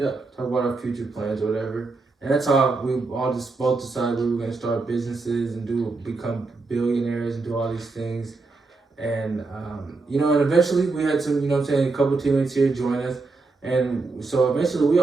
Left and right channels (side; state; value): left; quieter; 3.8 dB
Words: Talk about our future plans or whatever. And that's how we all just both decided we were gonna start businesses and become billionaires and do all these things. And you know, and eventually we had some, you know what I'm saying, a couple teammates here join us. And so eventually we